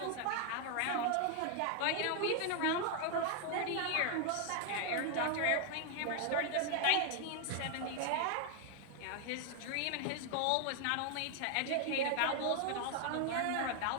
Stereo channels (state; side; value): different; both; correlation 0.00